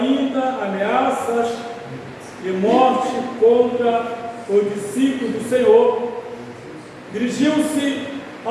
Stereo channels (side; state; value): both; identical; correlation 1.00